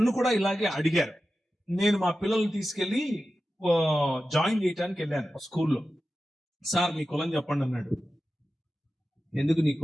కూడా ఇలాగే అడిగారు. నేను మా పిల్లల్ని తీసుకెళ్లి జాయిన్ చేయడానికి వెళ్ళాను స్కూల్లో. సార్ మీ కులం చెప్పండి అన్నాడు. ఎందుకు నీకు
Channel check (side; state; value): both; normal; correlation 0.93